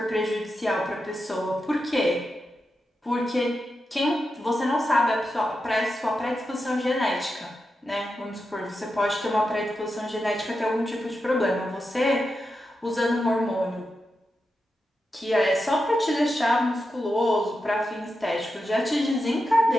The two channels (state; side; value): normal; both; correlation 0.89